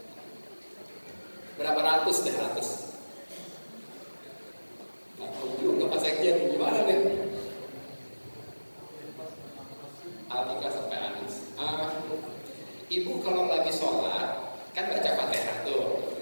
Berapa ratus deh, ratus. Nah, juga Pak Sekjen, gimana deh? Alika sampai Anis. Ibu kalau lagi sholat, kan baca Fatihah tuh.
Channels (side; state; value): both; inverted; correlation -1.00